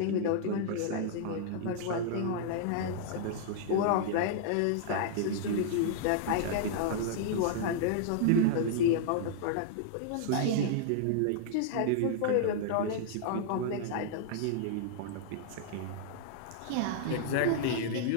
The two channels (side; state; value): both; different; correlation -0.01